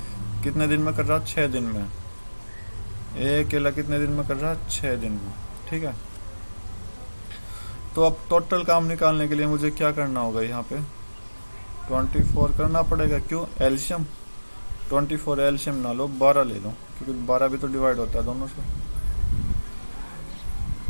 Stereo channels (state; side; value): inverted; both; correlation -1.00